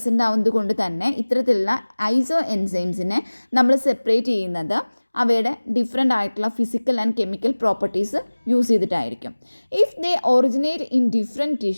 ആവുന്നത് കൊണ്ട് തന്നെ ഇത്തരത്തിലുള്ള ഐസോ എൻസൈംസിനെ നമ്മൾ സെപ്പറേറ്റ് ചെയ്യുന്നത് അവയുടെ ഡിഫറെൻ്റ് ആയിട്ടുള്ള physical and chemical properties use ചെയ്തിട്ടായിരിക്കും. If they originate in different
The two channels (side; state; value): both; inverted; correlation -1.00